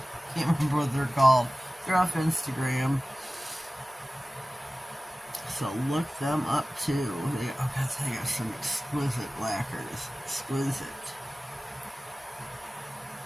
remember what they're called. They're off Instagram. So look them up too. They got some exquisite lacquers. Exquisite.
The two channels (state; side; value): normal; both; correlation 0.97